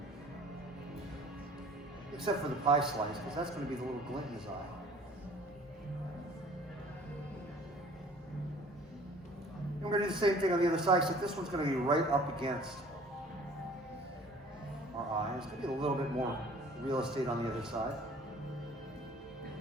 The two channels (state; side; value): normal; both; correlation 0.51